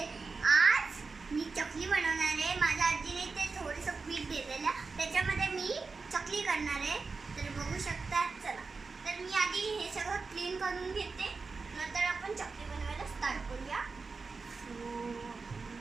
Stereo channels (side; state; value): left; quieter; 4.4 dB